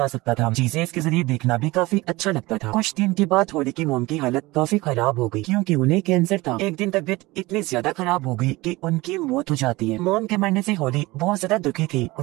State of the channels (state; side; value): quieter; left; 21.0 dB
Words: सकता था। चीजें इसके जरिए देखना भी काफी अच्छा लगता था। कुछ दिन के बाद होली की मोम की हालत काफी खराब हो गई, क्योंकि उन्हें कैंसर था। एक दिन तबीयत इतनी ज्यादा खराब हो गई कि उनकी मौत हो जाती है। मोम के मरने से होली बहुत ज्यादा दुखी थी,